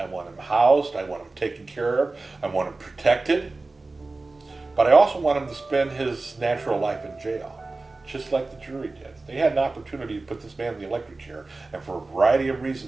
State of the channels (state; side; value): quieter; left; 3.4 dB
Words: want him housed. I want him taken care of. I want him protected. But I also want him to spend his natural life in jail, just like the jury did. They had an opportunity to put this man in the electric chair, and for a variety of